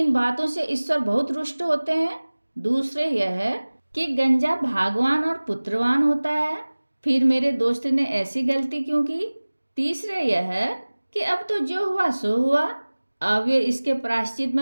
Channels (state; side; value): inverted; both; correlation -1.00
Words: बातों से ईश्वर बहुत रुष्ट होते हैं। दूसरे यह है कि गंजा भागवान और पुत्रवान होता है, फिर मेरे दोस्त ने ऐसी गलती क्यों की। तीसरे यह है कि अब तो जो हुआ सो हुआ। अब वे इसके प्रायश्चित